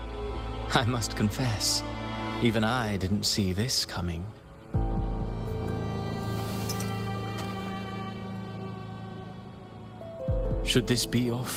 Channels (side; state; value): both; identical; correlation 1.00